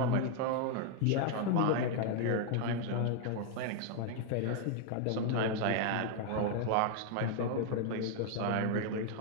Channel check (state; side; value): different; both; correlation 0.00